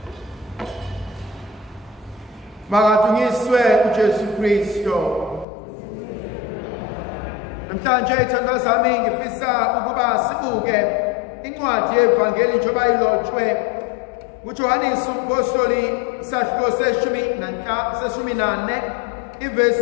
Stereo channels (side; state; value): right; drops out; at 5.5 s